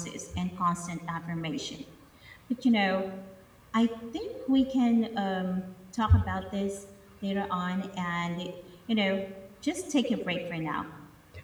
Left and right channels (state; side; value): identical; both; correlation 1.00